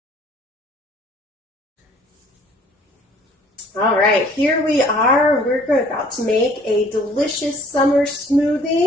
All right, here we are. We're about to make a delicious summer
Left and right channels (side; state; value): both; normal; correlation 0.56